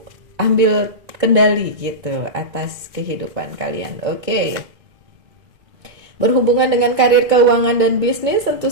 ambil kendali gitu atas kehidupan kalian. Oke. Berhubungan dengan karir, keuangan, dan bisnis, tentu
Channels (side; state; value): left; late; 2.0 ms